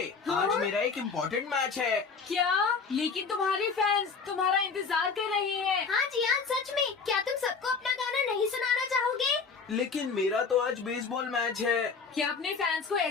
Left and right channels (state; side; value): quieter; right; 5.2 dB